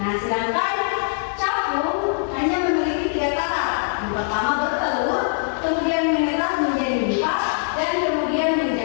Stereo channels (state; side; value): silent; right; 55 dB below the other